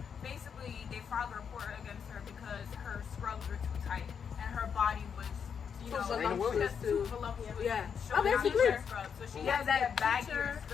basically they filed a report against her because her scrubs were too tight and her body was." You know, voluptuous just too. too voluptuous. Yeah. and Oh, showing out basically. her scrubs. So she Yeah, has that that baggier teacher,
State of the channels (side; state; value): right; quieter; 7.0 dB